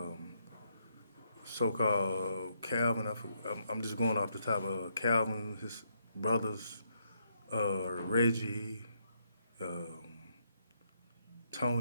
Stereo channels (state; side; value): inverted; both; correlation -0.76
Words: So-called Calvin. I'm just going off the top of Calvin, his brothers, Reggie, um,